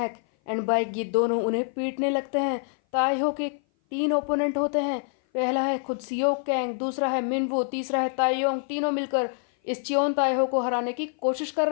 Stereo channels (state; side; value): silent; right; 57 dB below the other